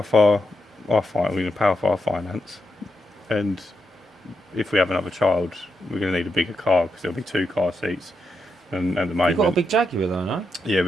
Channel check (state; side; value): normal; both; correlation 0.84